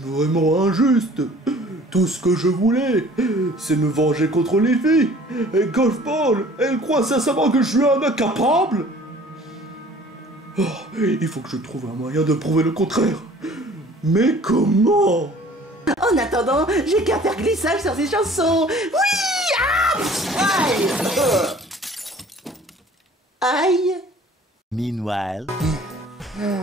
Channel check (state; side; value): normal; both; correlation 0.50